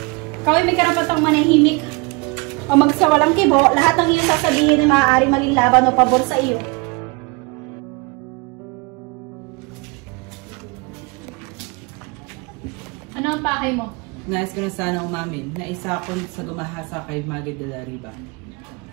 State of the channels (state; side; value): quieter; left; 28.3 dB